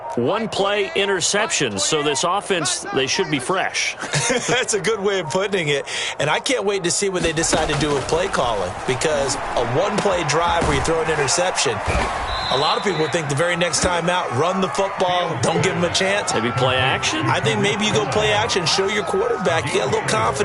one-play interceptions. So this offense, they should be fresh. That's a good way of putting it. And I can't wait to see what they decide to do with play calling. Because a one-play drive where you throw an interception, a lot of people think the very next time out, run the football, don't give them a chance. Maybe play action? I think maybe you go play action, show your quarterback, you get a little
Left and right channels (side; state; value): both; identical; correlation 1.00